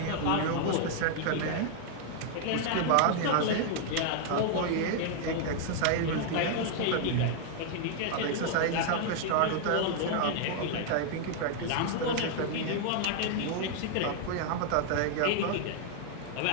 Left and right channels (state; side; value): different; both; correlation 0.00